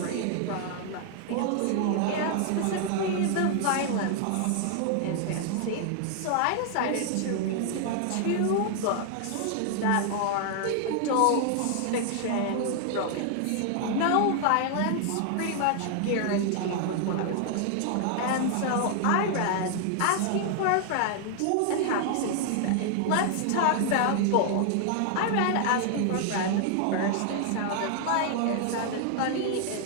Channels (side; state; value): both; different; correlation 0.00